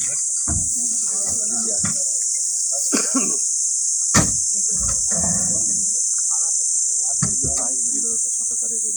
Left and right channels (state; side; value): identical; both; correlation 1.00